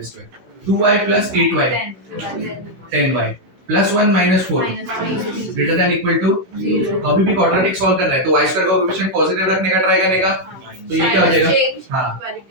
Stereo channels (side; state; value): left; late; 16 ms